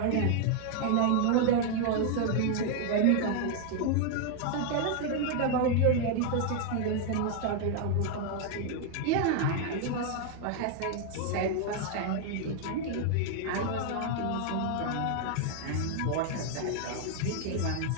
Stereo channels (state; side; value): different; both; correlation 0.00